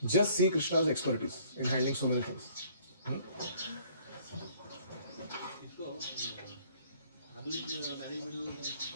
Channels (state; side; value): inverted; both; correlation -0.58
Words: Just see Krishna's expertise in handling so many things.